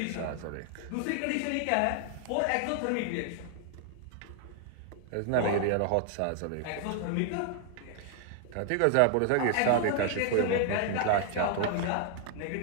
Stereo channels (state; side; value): different; both; correlation 0.00